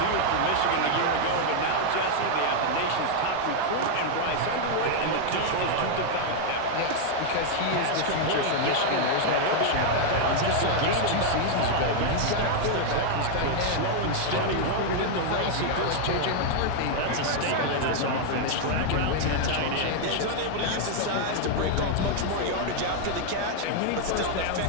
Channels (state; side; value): different; both; correlation 0.00